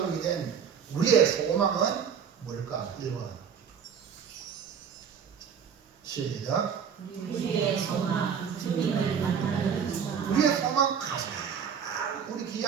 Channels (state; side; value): quieter; left; 7.2 dB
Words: 된 우리의 소망은 뭘까? 1번 시작. 우리의 소망, 주님을 만나는 소망. 우리의 소망, 가장 우리